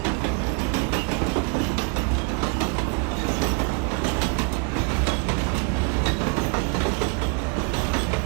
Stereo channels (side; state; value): left; quieter; 32.5 dB